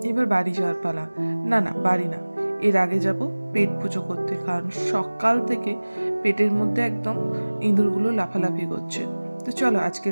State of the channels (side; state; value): both; inverted; correlation -1.00